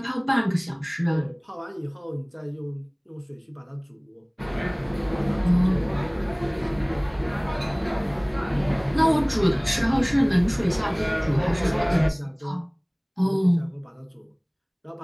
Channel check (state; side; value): identical; both; correlation 1.00